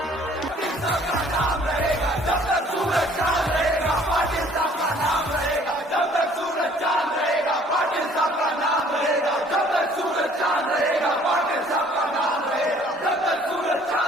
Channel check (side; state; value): both; normal; correlation 0.56